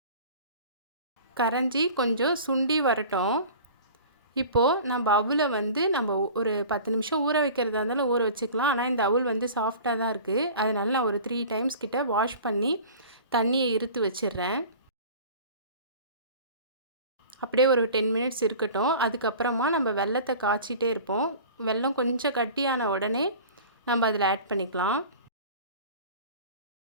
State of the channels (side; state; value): both; inverted; correlation -0.41